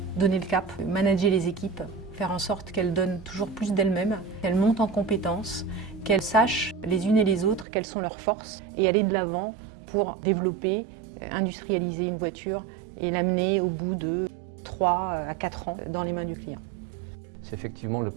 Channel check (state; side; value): drops out; left; at 7.7 s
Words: donner le cap, manager les équipes, faire en sorte qu'elles donnent toujours plus d'elles-mêmes, qu'elles montent en compétences, qu'elles sachent les unes et les autres quelles sont leurs forces et aller de l'avant pour développer, industrialiser une voiture et l'amener au bout de 3 à 4 ans dans les mains du client. C'est effectivement le